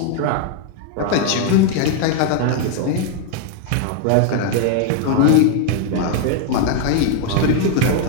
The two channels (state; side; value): different; both; correlation 0.00